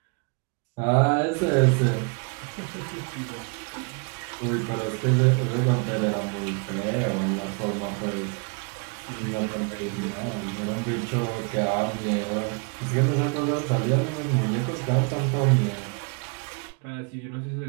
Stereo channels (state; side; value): quieter; left; 35.6 dB